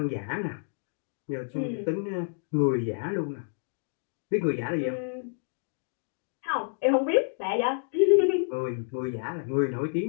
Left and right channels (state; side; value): silent; right; digital silence